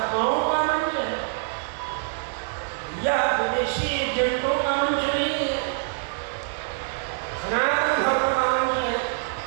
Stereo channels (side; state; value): left; silent; digital silence